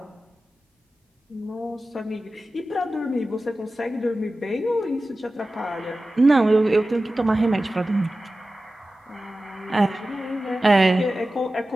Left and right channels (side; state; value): both; normal; correlation 0.95